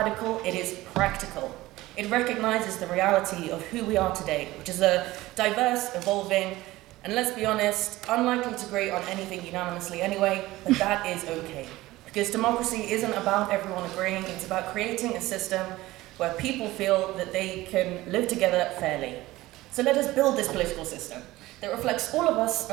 it is practical. It recognizes the reality of who we are today, which is a diverse, evolving, and let's be honest, unlikely to agree on anything unanimously anyway, but that is okay. Because democracy isn't about everyone agreeing, it's about creating a system where people feel that they can live together fairly. So let us build this political system that reflects all of us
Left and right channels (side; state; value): left; quieter; 17.9 dB